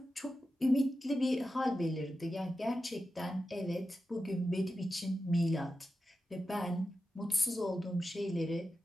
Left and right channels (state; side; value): normal; both; correlation 0.91